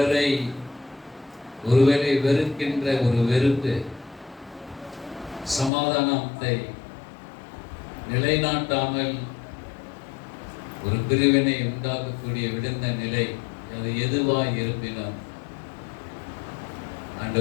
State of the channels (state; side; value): drops out; right; at 5.7 s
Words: ஒருவேளை வெறுக்கின்ற ஒரு வெறுப்பு, சமாதானத்தை நிலைநாட்டாமல் ஒரு பிரிவினை உண்டாக்கக்கூடிய விழுந்த நிலை, அது எதுவாய் இருப்பினும்